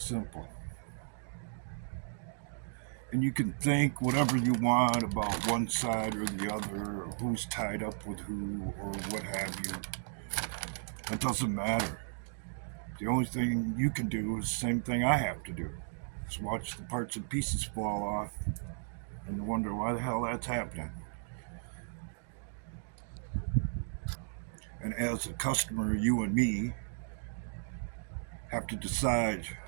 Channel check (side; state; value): left; silent; digital silence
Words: simple. And you can think whatever you want about one side or the other, or who's tied up with who, or what have you. It doesn't matter. The only thing you can do is the same thing I have to do. Just watch the parts and pieces fall off and wonder why the hell that's happening. And as a customer, you and me have to decide